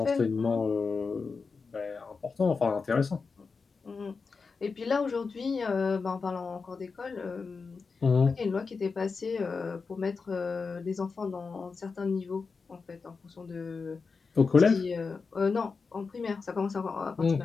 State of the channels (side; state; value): right; quieter; 4.8 dB